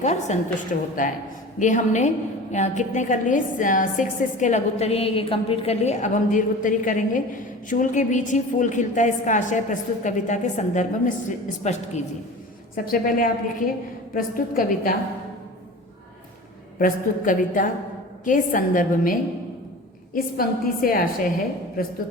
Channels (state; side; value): normal; both; correlation 0.37